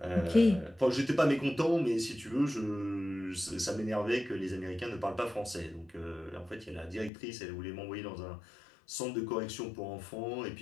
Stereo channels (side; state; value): right; drops out; at 7.1 s